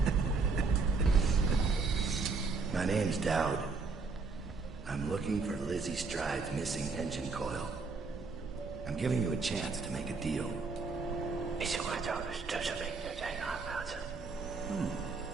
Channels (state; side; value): quieter; left; 4.3 dB